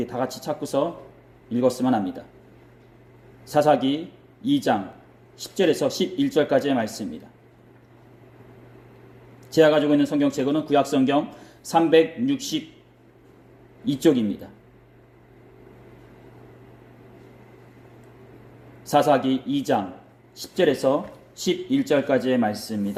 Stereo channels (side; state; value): both; identical; correlation 1.00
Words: 다 같이 찾고서 읽었으면 합니다. 사사기 2장 10절에서 11절까지의 말씀입니다. 제가 가지고 있는 성경책은 구약성경 362쪽입니다. 사사기 2장 10절에서 11절까지의